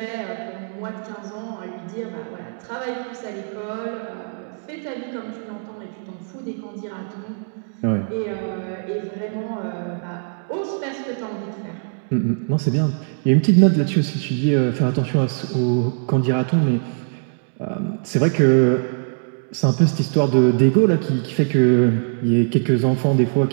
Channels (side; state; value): left; silent; digital silence